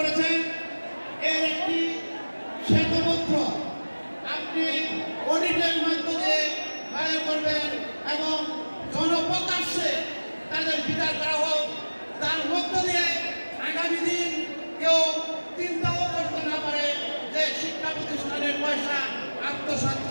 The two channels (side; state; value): both; inverted; correlation -1.00